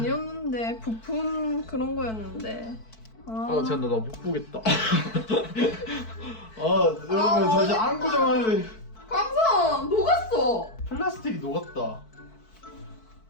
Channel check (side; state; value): right; late; 4.5 ms